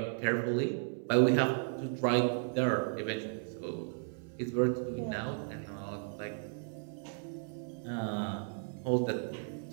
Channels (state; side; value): silent; left; 55 dB below the other